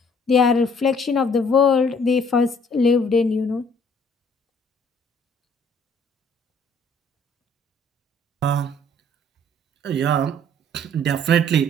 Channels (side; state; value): both; normal; correlation 0.59